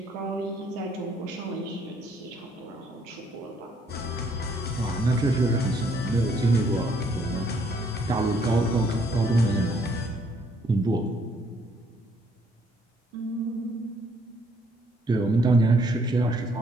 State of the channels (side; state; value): both; normal; correlation 0.67